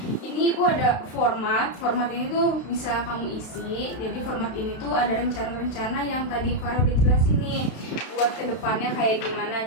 ini ibu ada format ini tuh bisa kamu isi. Jadi format ini tuh ada rencana-rencana yang tadi Farah udah jelasin nih buat kedepannya kayak gimana.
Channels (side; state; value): right; late; 32 ms